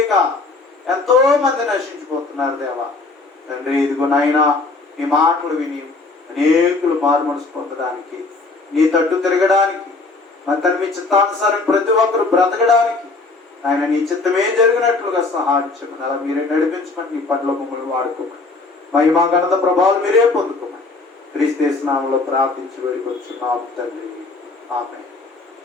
ఎంతో మంది నశించిపోతున్నారు దేవా. తండ్రి ఇదిగో నాయన నీ మాటలు విని అనేకులు మారు మనసు పొందడానికి నీ తట్టు తిరగడానికి మా తండ్రి మీ చిత్తానుసారం ప్రతి ఒక్కరు బ్రతకడానికి ఆయన నీ చిత్తమే జరిగినట్లుగా సహాయం చేయమని అలా మీరే నడిపించమని నీ పట్ల మమ్మల్ని వాడుకోమని మహిమా ఘనత ప్రభావాలు మీరే పొందుకోమని క్రీస్తు నామములో ప్రార్థించి వేడుకొంచున్నాము తండ్రి. ఆమేన్.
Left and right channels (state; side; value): quieter; right; 3.6 dB